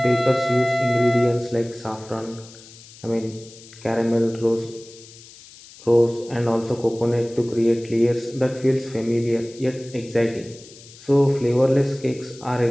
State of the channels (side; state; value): left; noise; hiss, 20 dB below the sound